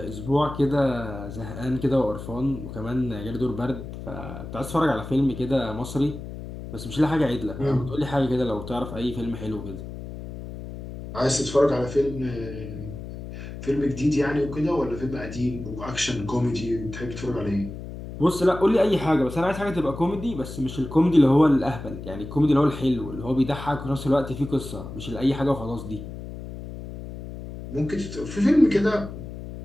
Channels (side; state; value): left; noise; hum, 10 dB below the sound